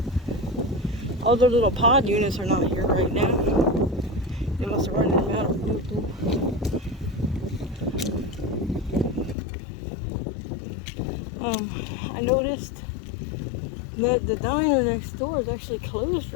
All the little pod units are not here right now. They must have run them out of doo-doo. I noticed that the diner next door is actually closed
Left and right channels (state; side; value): drops out; right; at 9.3 s